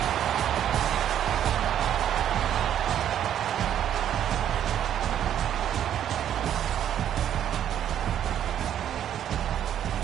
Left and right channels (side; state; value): left; quieter; 10.3 dB